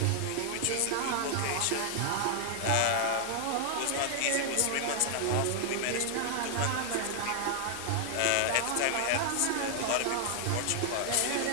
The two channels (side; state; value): both; different; correlation 0.00